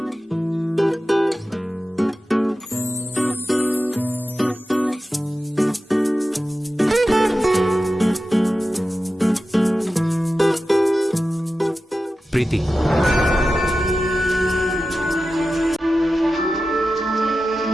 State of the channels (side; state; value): both; normal; correlation 0.93